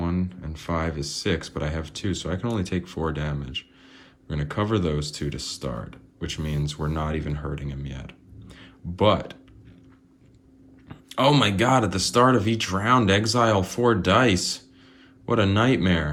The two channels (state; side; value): identical; both; correlation 1.00